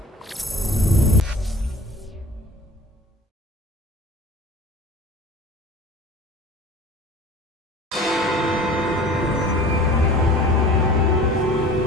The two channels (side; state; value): both; normal; correlation 0.42